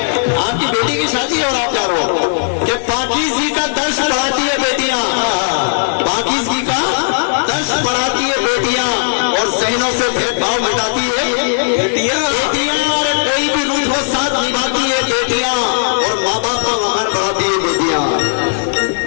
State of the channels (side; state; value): right; silent; 57 dB below the other